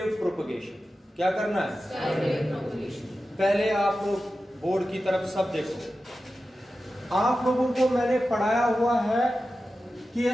प्रोपगेशन। क्या करना है? Sky wave propagation. पहले आप लोग बोर्ड की तरफ सब देखो। आप लोगों को मैंने पढ़ाया हुआ है कि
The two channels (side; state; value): both; normal; correlation 0.93